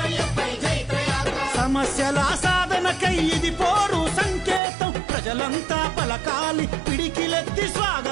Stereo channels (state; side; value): drops out; left; at 4.6 s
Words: సమస్యల సాధనకై ఇది పోరు సంకేతం ప్రజలంతా పలకాలి పిడికిలెత్తి